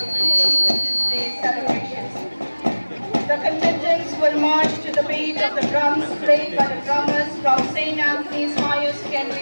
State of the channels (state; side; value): inverted; both; correlation -1.00